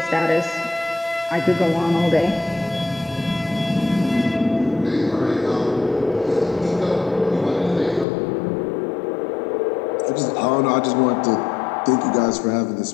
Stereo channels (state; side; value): drops out; right; at 8.1 s